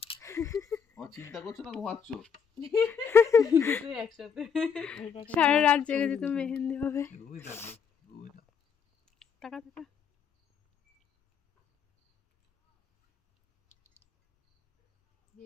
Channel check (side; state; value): right; quieter; 6.7 dB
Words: চিন্তা করছো না ঘুমাচ্ছ? সারা রাত জেগে যেত মেহেন্দি হবে। টাকা